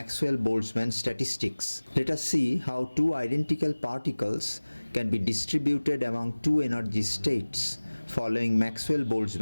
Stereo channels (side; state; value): both; inverted; correlation -1.00